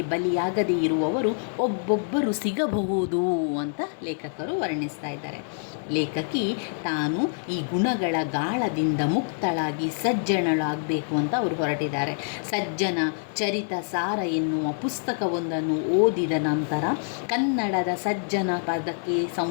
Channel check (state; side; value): silent; right; digital silence